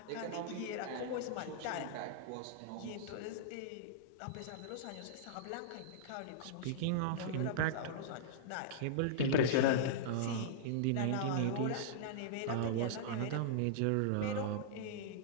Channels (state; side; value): different; both; correlation -0.02